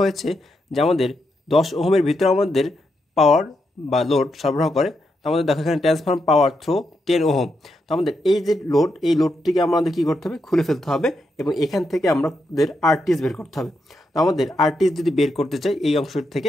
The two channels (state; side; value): normal; both; correlation 0.82